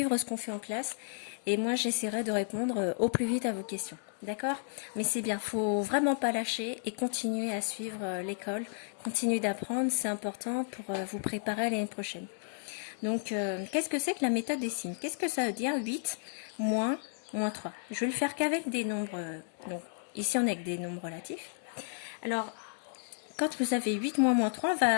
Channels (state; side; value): silent; right; digital silence